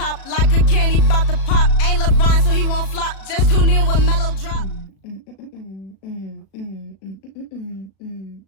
like a candy bout to pop. Ain't LeBron, so he won't flop. Just tune in when Mellow drop.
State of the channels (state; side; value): late; right; 36 ms